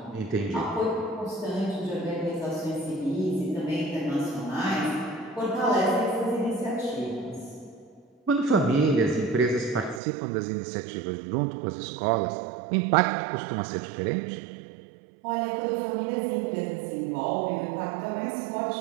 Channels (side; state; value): left; drops out; at 10.0 s